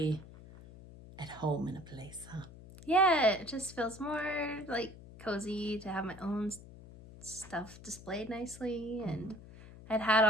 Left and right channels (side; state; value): left; noise; hum, 17 dB below the sound